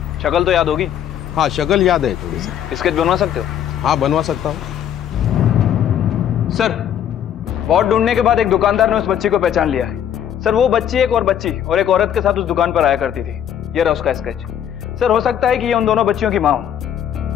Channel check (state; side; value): quieter; right; 9.7 dB